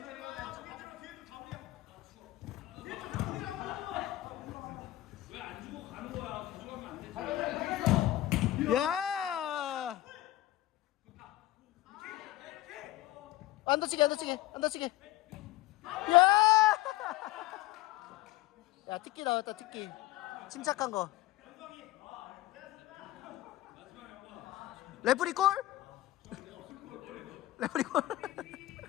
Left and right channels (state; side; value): quieter; right; 16.0 dB